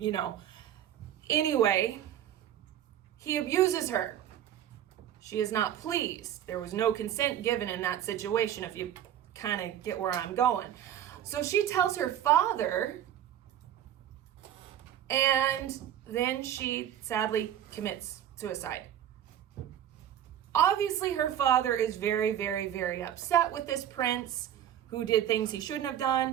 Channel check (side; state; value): left; quieter; 10.8 dB